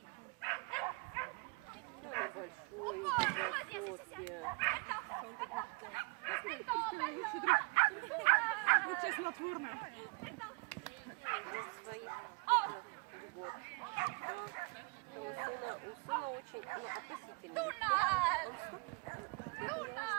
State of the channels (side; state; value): left; quieter; 30.8 dB